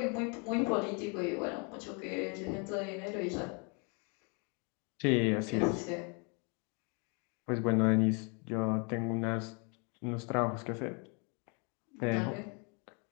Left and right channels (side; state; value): right; quieter; 34.8 dB